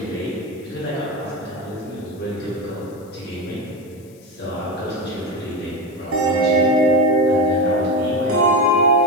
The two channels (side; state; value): left; noise; hiss, 28 dB below the sound